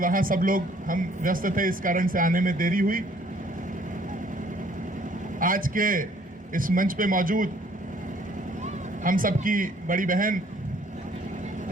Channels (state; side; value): normal; both; correlation 0.60